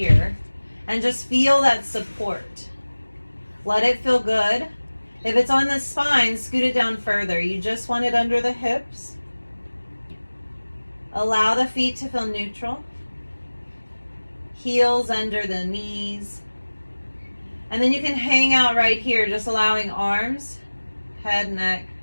and just feel that support. Let it feel good. If it's on the spine, scoot it down further. You just want it under the hips. Allow the feet to feel neutral. Heels under the knees. And then you can hang out right here, just allowing arms, head, neck,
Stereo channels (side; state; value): both; inverted; correlation -1.00